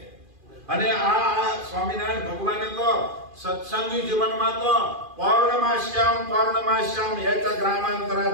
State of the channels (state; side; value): late; left; 2.5 ms